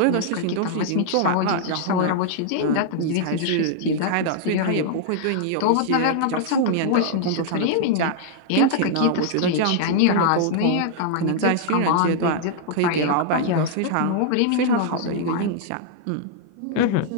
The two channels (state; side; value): different; both; correlation -0.01